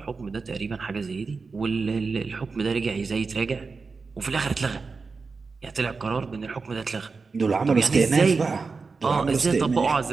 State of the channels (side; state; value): left; quieter; 4.5 dB